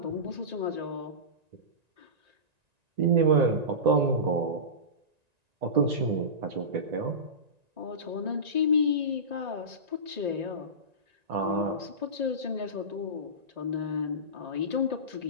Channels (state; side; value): late; left; 1.9 ms